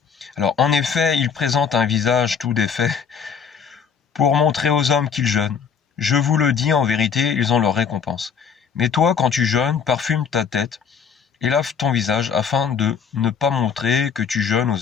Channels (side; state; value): right; quieter; 6.7 dB